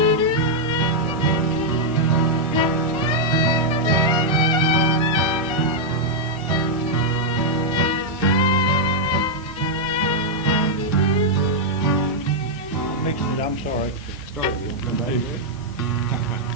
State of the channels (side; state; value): both; normal; correlation -0.04